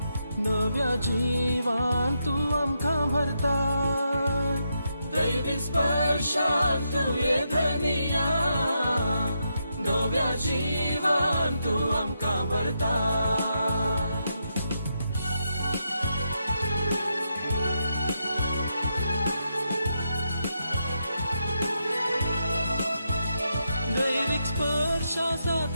नव्या जिवान तू आमकां भरता दैविक स्पर्शान तुये धनिया नव्या जिवान तू आमकां भरता दैविक स्पर्श आसा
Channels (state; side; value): inverted; both; correlation -0.82